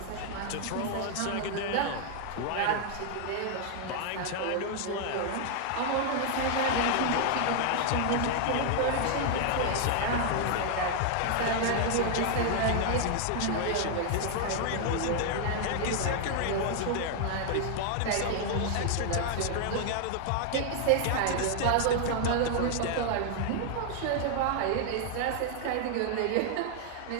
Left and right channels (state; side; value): different; both; correlation 0.00